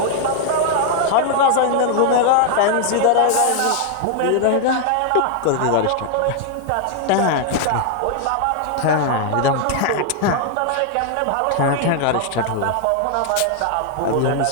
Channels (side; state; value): both; different; correlation 0.00